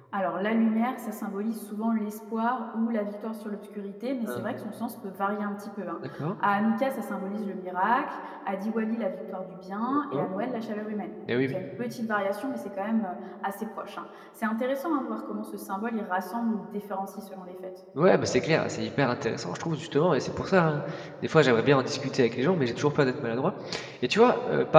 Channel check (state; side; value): identical; both; correlation 1.00